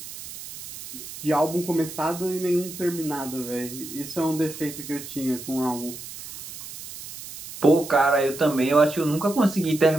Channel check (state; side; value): noise; right; hiss, 12 dB below the sound